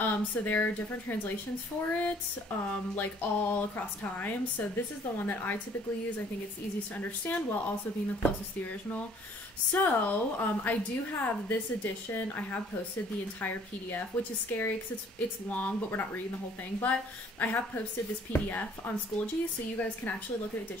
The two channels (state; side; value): normal; both; correlation 0.58